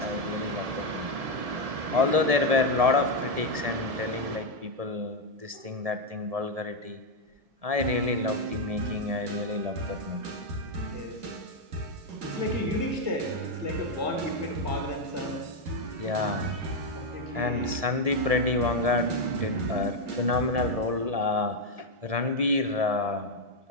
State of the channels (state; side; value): late; left; 1.7 ms